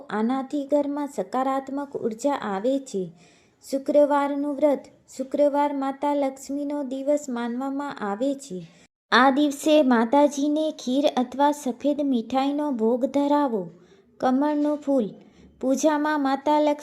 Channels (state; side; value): identical; both; correlation 1.00